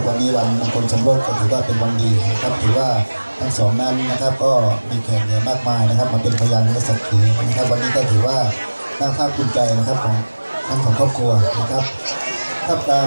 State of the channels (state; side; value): inverted; both; correlation -1.00